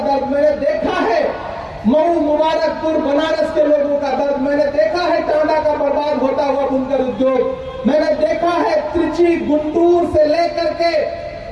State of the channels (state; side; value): identical; both; correlation 1.00